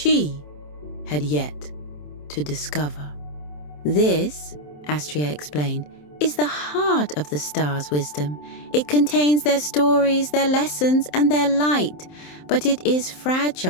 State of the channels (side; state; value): right; late; 27 ms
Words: had yet to discover. "This," Astria explained, "is the heart of the stars' wisdom. It contains their stories, their lessons, and their light, but it is